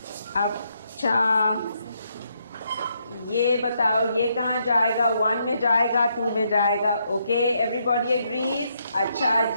ये बताओ ये कहाँ जाएगा? 1 में जाएगा, 2 में जाएगा? Okay everybody agrees. अच्छा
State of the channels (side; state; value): both; inverted; correlation -0.76